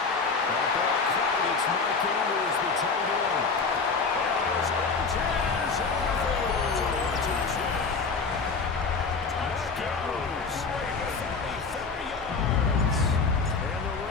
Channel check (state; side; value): quieter; right; 4.7 dB